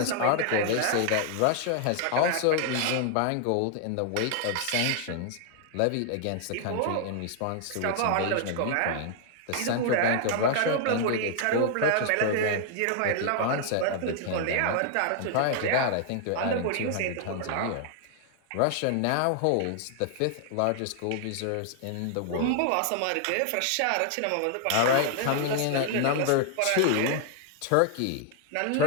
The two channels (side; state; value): both; different; correlation 0.00